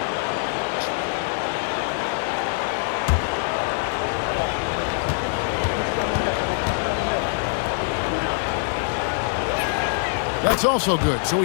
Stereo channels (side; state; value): right; silent; digital silence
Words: That's also good, so